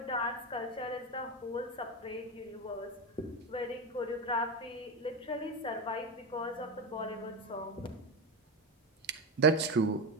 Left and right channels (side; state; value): both; normal; correlation 0.16